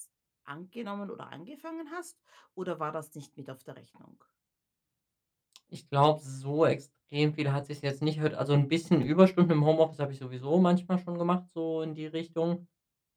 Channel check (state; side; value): identical; both; correlation 1.00